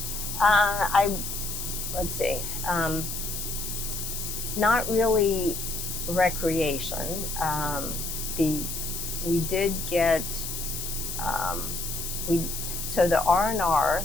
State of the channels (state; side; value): noise; left; hiss, 5 dB below the sound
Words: Let's see. Not really recreation. We did get so the R&R